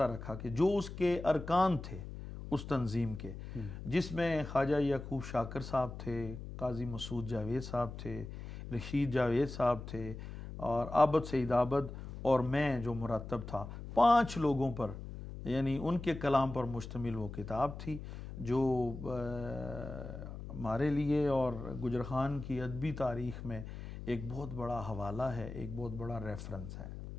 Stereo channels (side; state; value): left; noise; hum, 10 dB below the sound